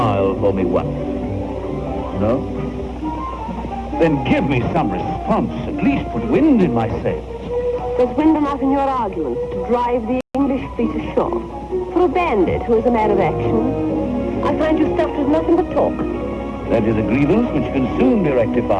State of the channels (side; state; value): both; identical; correlation 1.00